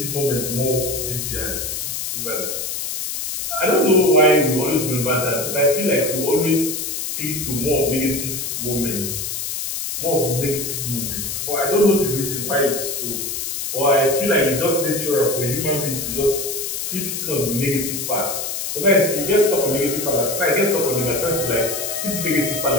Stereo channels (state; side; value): noise; left; hiss, 4 dB below the sound